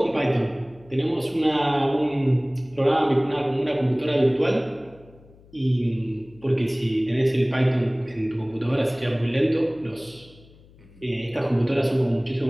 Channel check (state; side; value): noise; left; hum, 25 dB below the sound